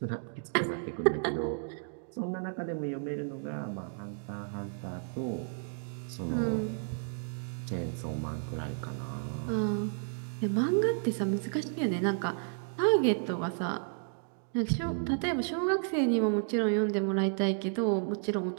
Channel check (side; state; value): left; silent; digital silence